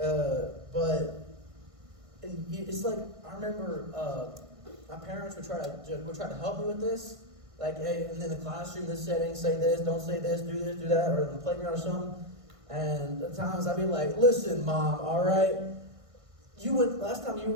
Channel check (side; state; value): left; late; 1.5 ms